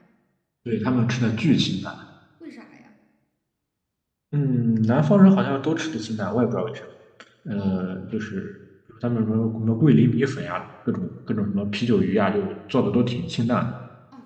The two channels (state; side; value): identical; both; correlation 1.00